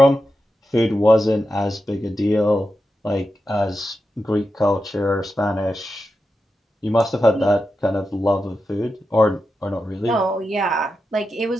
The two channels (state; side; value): normal; both; correlation 0.89